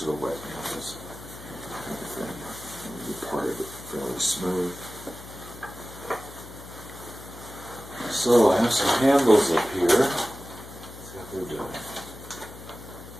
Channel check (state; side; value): noise; left; hum, 16 dB below the sound